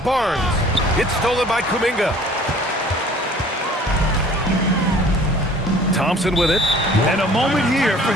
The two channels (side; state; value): both; normal; correlation 0.51